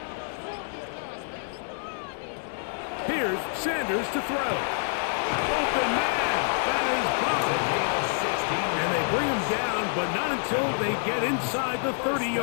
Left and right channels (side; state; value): right; silent; 58 dB below the other